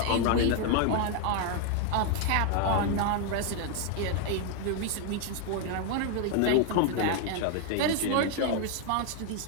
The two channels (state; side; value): different; both; correlation 0.01